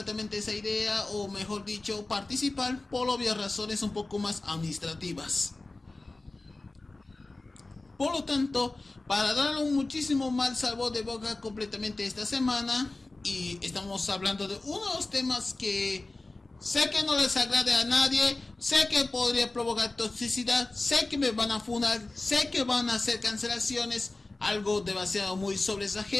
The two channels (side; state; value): right; quieter; 3.1 dB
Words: esa idea, o mejor dicho, participar por obvias razones un poco más administrativas. Por lo tanto, para dar un muchísimo mal sabor de boca completamente esta semana, y estamos hablando de uno de los temas que sé que no les agrade a nadie, sé que podría provocar toxicidad, sé que me van a funar, sé que van a hacer cancelaciones, algo demasiado muy